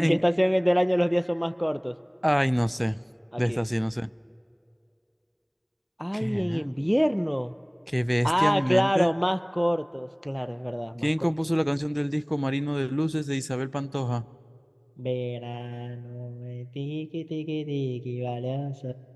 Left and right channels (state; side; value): identical; both; correlation 1.00